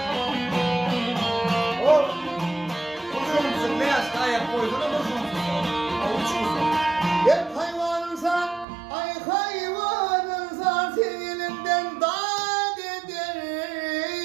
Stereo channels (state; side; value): drops out; left; at 8.7 s